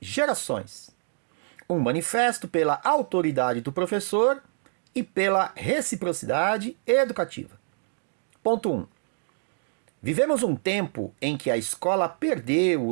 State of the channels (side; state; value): left; silent; digital silence